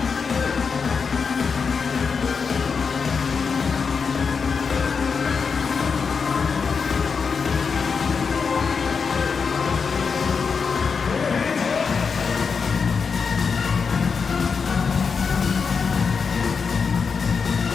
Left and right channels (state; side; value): quieter; right; 5.5 dB